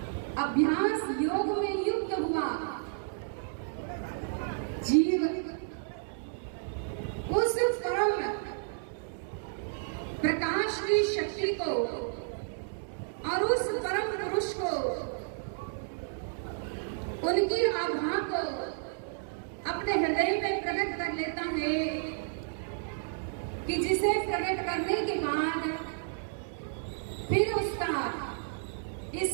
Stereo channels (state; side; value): silent; left; digital silence